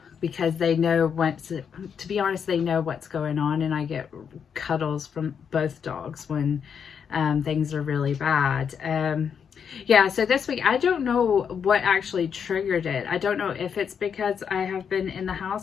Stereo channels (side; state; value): right; quieter; 7.2 dB